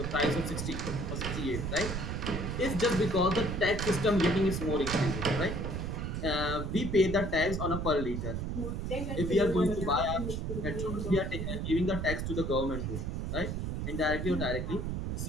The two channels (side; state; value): right; noise; rumble, 3 dB below the sound